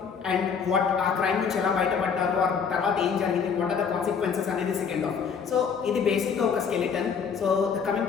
and what ఆ క్రైమ్ నుంచి ఎలా బయటపడ్డారు, ఆ తర్వాత ఏం జరిగింది, వాట్ ఆర్ ద కాన్సిక్వెన్సెస్ అనేది సెకండ్ ఆఫ్. సో ఇది బేసిక్గా ఒక skeleton. So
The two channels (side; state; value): right; quieter; 6.4 dB